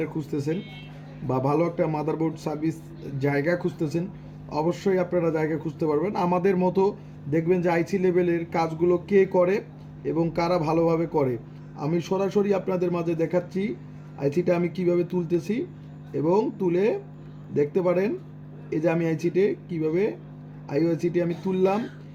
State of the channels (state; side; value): identical; both; correlation 1.00